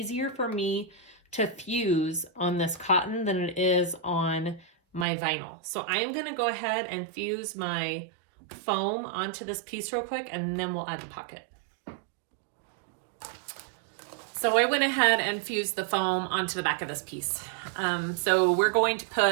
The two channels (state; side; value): drops out; left; at 5.1 s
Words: for me to fuse on this cotton than it is on my vinyl. So I am going to go ahead and fuse my foam onto this piece real quick, and then we'll add the pocket. So I went ahead and fused the foam onto the back of this piece. So we're going to